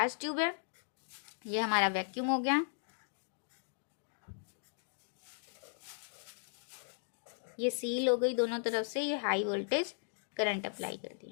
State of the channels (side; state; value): right; silent; digital silence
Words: ट्यूब है, ये हमारा वैक्यूम हो गया, ये सील हो गई दोनों तरफ से, ये हाई वोल्टेज करंट अप्लाई कर